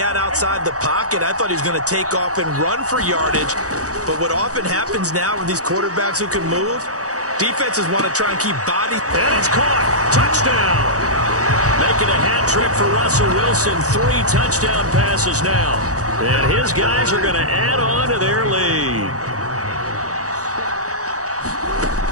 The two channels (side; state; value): left; late; 0.66 ms